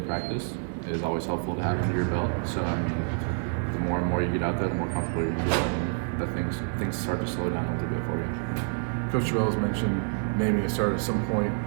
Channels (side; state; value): left; silent; 60 dB below the other